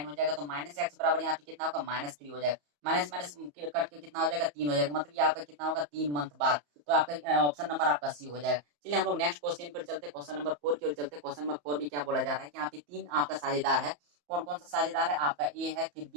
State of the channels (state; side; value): late; left; 34 ms